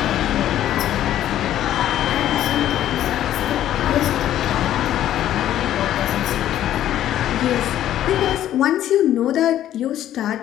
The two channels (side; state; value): right; quieter; 12.1 dB